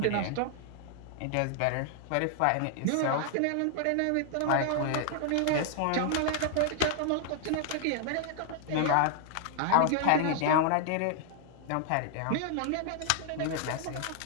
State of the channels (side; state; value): both; different; correlation 0.00